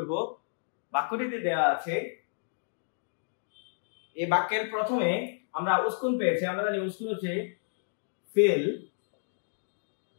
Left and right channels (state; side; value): silent; right; digital silence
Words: বাক্যটিতে দেয়া আছে, এই বাক্যের প্রথমে আমরা উসকুন পেয়েছি। আমরা জানি উসকুন হচ্ছে ফেল,